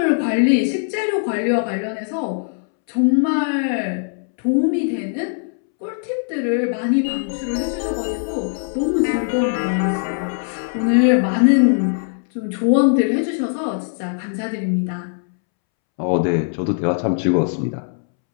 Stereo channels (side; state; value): right; silent; 66 dB below the other